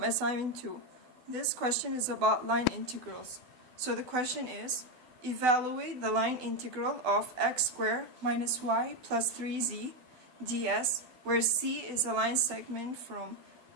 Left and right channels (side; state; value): left; late; 12 ms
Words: assignment 2. This question is about line integrals. So the question is, evaluate the line integral of x squared minus y plus 3z ds, where c is a line segment from